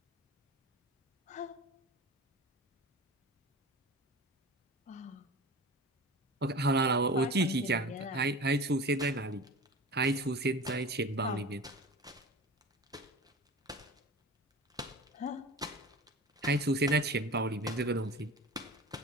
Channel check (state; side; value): normal; both; correlation 0.35